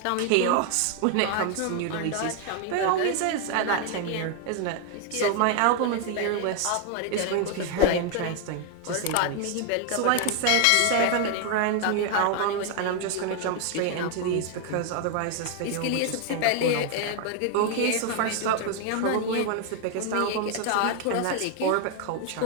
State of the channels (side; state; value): both; different; correlation 0.00